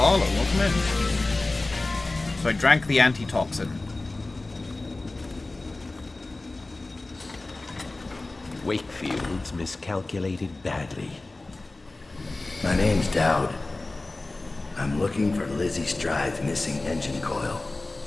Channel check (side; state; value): right; quieter; 3.1 dB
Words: Welcome in. So I drank the antitoxin. Wakefield's miscalculated badly. My name's Dowd. I'm looking for Lizzie Stride's missing engine coil.